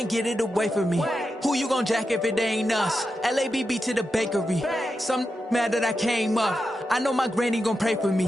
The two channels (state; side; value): normal; both; correlation 0.89